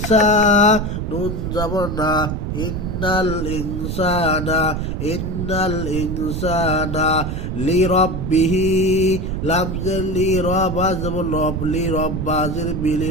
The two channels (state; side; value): noise; right; rumble, 3 dB below the sound